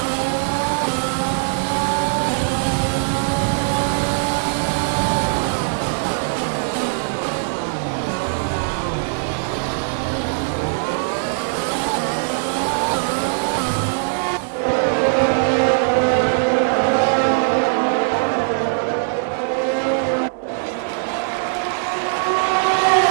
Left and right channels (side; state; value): left; silent; digital silence